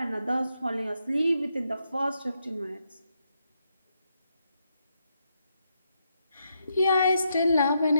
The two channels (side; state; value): both; inverted; correlation -0.81